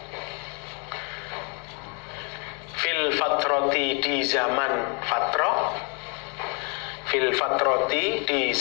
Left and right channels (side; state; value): right; quieter; 34.6 dB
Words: fil fatroti, di zaman fatroh, fil fatroti, di